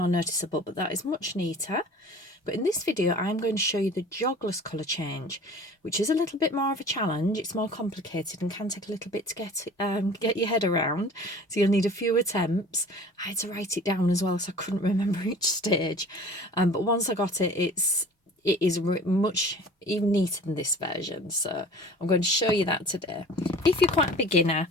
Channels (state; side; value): normal; both; correlation 0.44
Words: noticeable, but that is much neater. But in this video, I'm going to show you the Jogless Colour Change, which is a little bit more of a challenge. It's more complicated and can take a little bit to get your head around. So you'll need a few attempts. I had to write it down as well, so I couldn't remember each stage. But once I got it, it is much even neater than this version. So I'm going to show you that today. If you're quite a beginner,